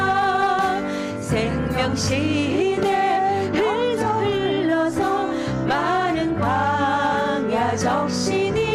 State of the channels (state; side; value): identical; both; correlation 1.00